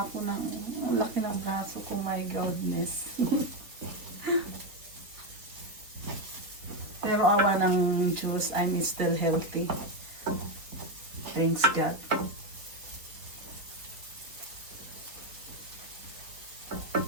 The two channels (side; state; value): left; late; 3.9 ms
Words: ko ng, ang laki ng braso ko, my goodness. Pero awa ng Diyos, I'm still healthy. Thanks God.